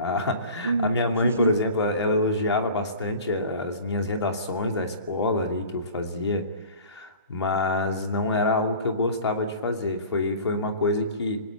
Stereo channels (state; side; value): inverted; both; correlation -0.42